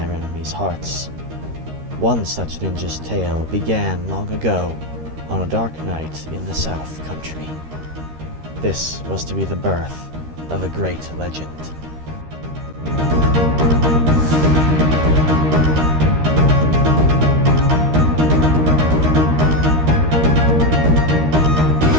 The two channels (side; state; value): left; late; 13 ms